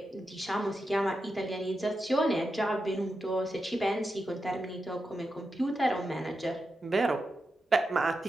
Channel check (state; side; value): normal; both; correlation 0.88